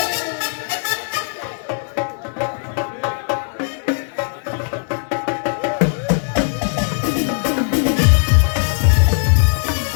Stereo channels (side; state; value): right; silent; 67 dB below the other